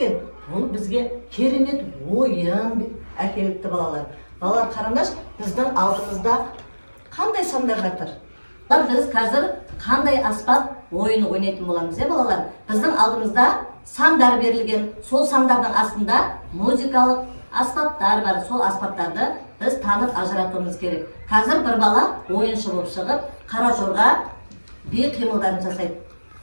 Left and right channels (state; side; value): inverted; both; correlation -1.00